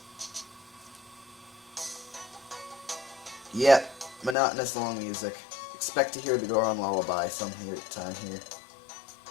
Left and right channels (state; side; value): drops out; right; at 4.4 s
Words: Yep, monotonous long music. Expect to hear the Goron lullaby some time here.